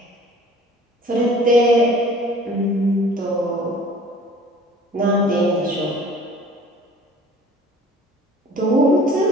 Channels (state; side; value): normal; both; correlation 0.48